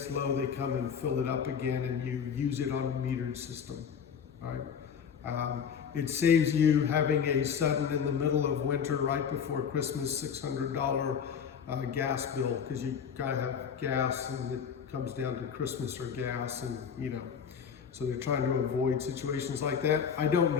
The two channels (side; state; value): right; quieter; 7.2 dB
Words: low they come and fill it up again and you use it on a metered system. All right? It saves you having a sudden, in the middle of winter, right before Christmas, $600 gas bill, because you gotta have gas and it comes down to Christmas or gas, and so they're trying to avoid situations like that. I don't